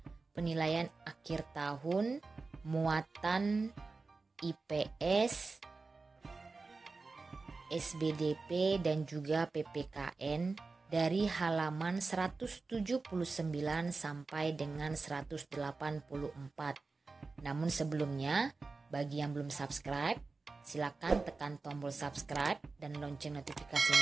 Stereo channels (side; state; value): left; quieter; 3.9 dB